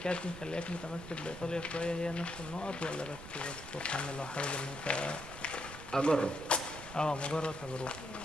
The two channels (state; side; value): noise; right; rumble, 13 dB below the sound